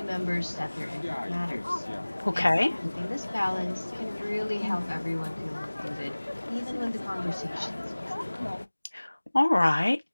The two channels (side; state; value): both; inverted; correlation -1.00